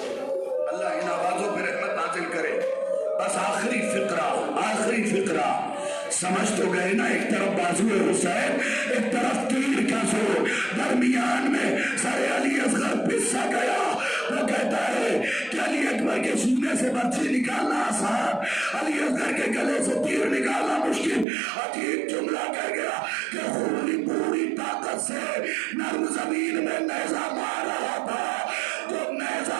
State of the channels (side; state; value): left; drops out; at 21.2 s